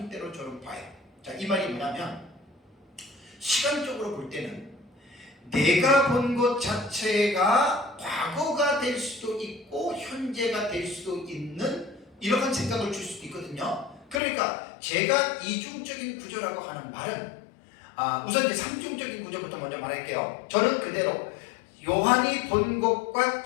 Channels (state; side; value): drops out; right; at 14.2 s